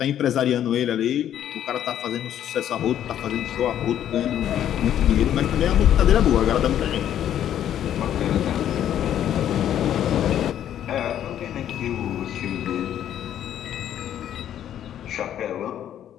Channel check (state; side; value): quieter; right; 10.7 dB